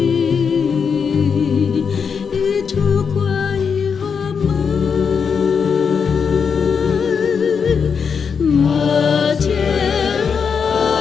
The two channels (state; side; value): quieter; right; 6.2 dB